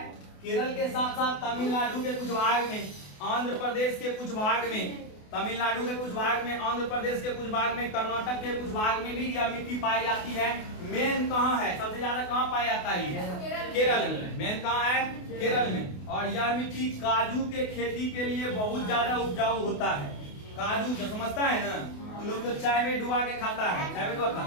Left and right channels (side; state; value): right; late; 28 ms